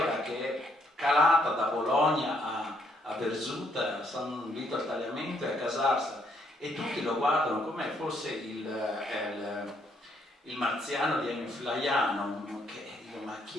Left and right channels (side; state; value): both; normal; correlation 0.71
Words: che è calata da Bologna a Verzuta, a San Vito al Tagliamento e a Casarsa, e tutti lo guardano come fosse il marziano di Ennio Flaiano, che dico: ma